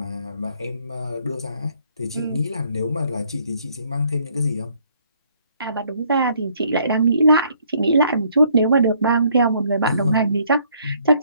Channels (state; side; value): inverted; both; correlation -0.66